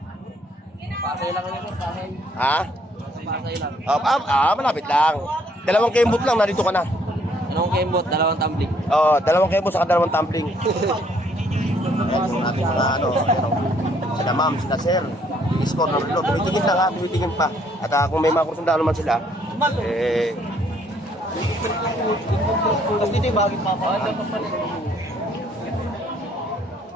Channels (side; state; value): both; normal; correlation 0.66